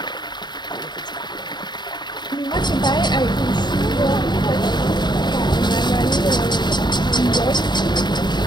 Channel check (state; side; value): late; right; 0.21 ms